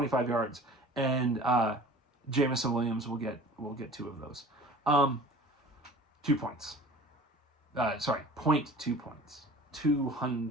yards, and Jameson Williams will get 2 of those. 2 points. Sorry, 0.2 points.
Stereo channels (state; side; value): normal; both; correlation 0.43